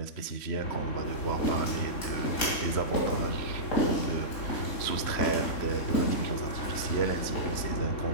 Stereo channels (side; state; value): right; late; 3.1 ms